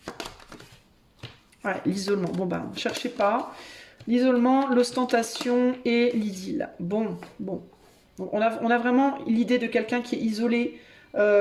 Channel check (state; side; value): identical; both; correlation 1.00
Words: Ouais, l'isolement. Bon, bah, cherchez pas. L'isolement, l'ostentation et l'idylle. Bon. On a vraiment l'idée de quelqu'un qui est isolé,